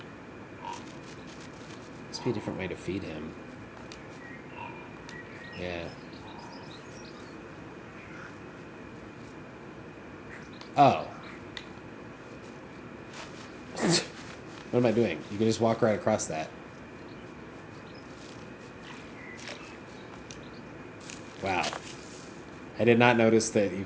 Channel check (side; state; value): both; identical; correlation 1.00